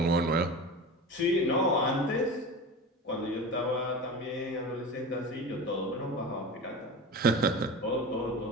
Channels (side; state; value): both; normal; correlation 0.30